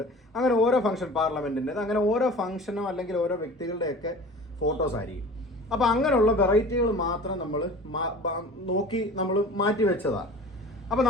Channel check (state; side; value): normal; both; correlation 0.41